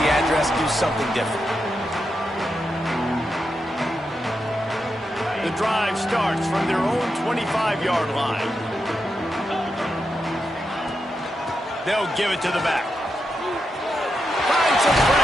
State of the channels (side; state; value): both; normal; correlation 0.86